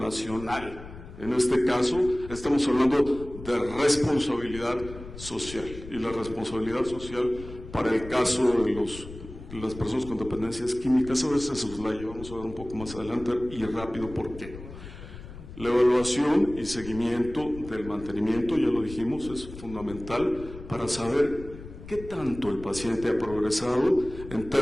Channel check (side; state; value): left; noise; rumble, 14 dB below the sound